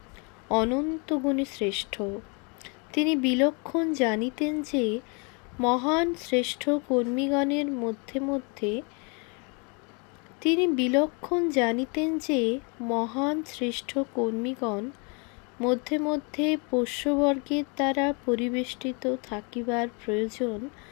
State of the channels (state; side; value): quieter; right; 33.9 dB